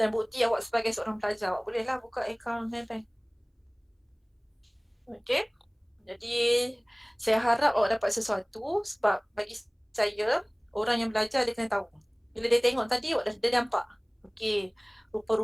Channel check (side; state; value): both; identical; correlation 1.00